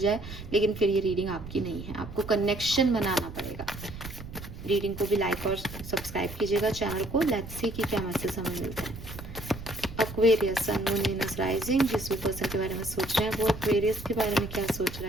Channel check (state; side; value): noise; right; rumble, 12 dB below the sound